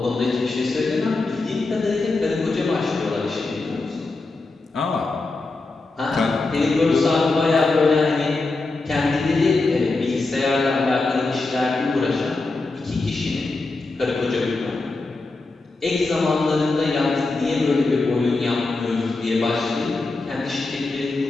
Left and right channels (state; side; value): quieter; right; 3.5 dB